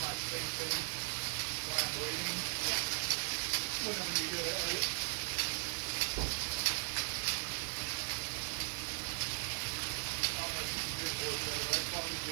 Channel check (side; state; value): left; silent; 52 dB below the other